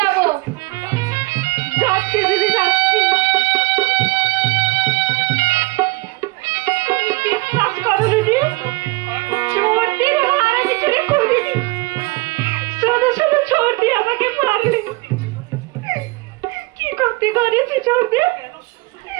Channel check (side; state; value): left; quieter; 23.8 dB